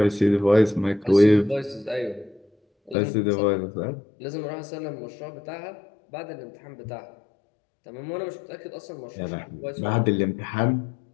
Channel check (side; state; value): right; drops out; at 3.0 s